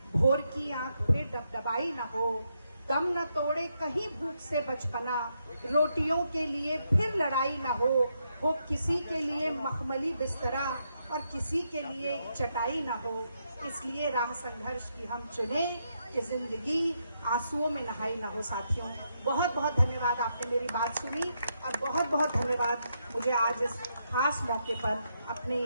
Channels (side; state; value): both; inverted; correlation -0.80